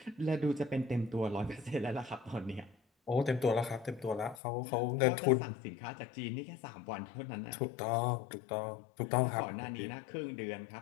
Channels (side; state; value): right; drops out; at 4.4 s